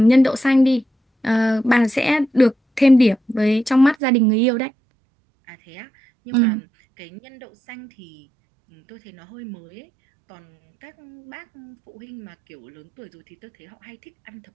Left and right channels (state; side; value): drops out; left; at 4.0 s